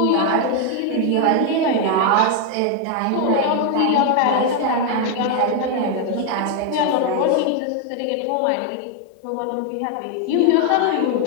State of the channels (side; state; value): both; different; correlation 0.01